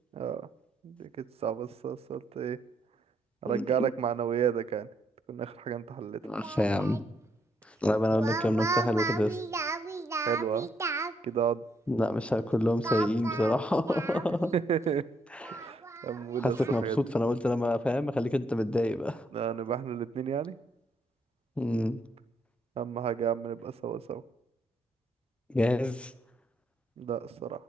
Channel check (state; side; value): normal; both; correlation 0.74